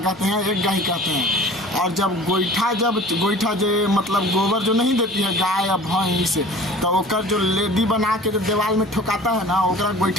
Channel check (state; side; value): normal; both; correlation 0.44